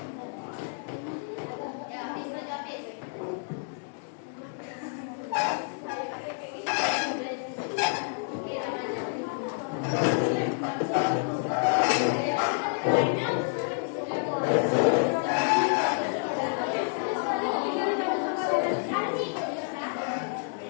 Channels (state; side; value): silent; right; 59 dB below the other